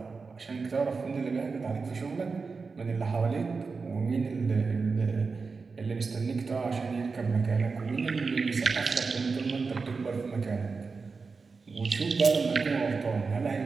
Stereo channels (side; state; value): left; quieter; 4.6 dB